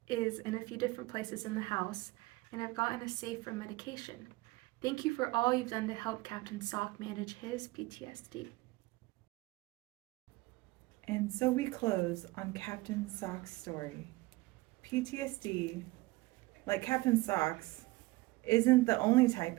is in a few different places in the house, and I've gotten a safe for medication. Thank you for all you've done to help Captain Sock manage his PTSD. And so we close on Captain Sock's story. PTSD, like Captain Sock's, isn't the only type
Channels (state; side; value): quieter; left; 20.9 dB